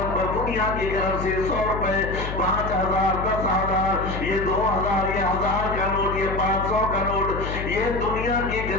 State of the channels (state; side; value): noise; left; hum, 6 dB below the sound